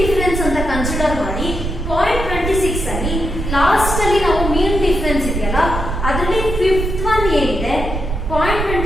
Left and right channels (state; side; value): noise; right; rumble, 4 dB below the sound